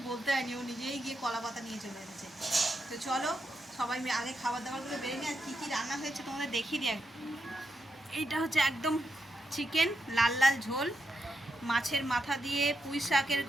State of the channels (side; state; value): both; normal; correlation 0.85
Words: বলতে হয়নি, ও নিজেই গিয়ে কলা পাতা নিয়ে চলে এসেছে। তো চলো সবাই আগে খাবার দাবারগুলো বেরিয়ে নিয়ে, আর কী কী রান্না হয়েছে তোমাদের দেখিয়ে দিই। এইটা হচ্ছে একদম চিকেন, লাল লাল ঝোল, মাছের মাথা দিয়ে পুঁই শাকের